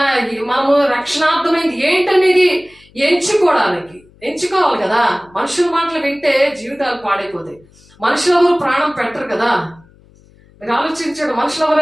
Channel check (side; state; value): left; noise; hum, 28 dB below the sound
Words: మనము రక్షణార్థమైంది ఏంటనేది ఎంచుకోవాలి కదా. మనుషుల మాటలు వింటే జీవితాలు పాడైపోతాయి. మనుషులు ఎవరు ప్రాణం పెట్టరు కదా. మీరు ఆలోచించండి, మనుషులు